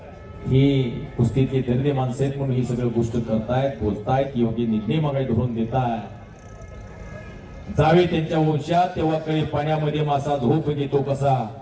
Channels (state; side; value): identical; both; correlation 1.00